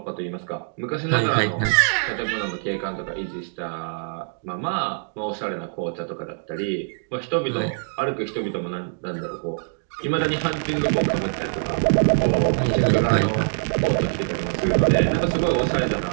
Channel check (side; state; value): left; silent; digital silence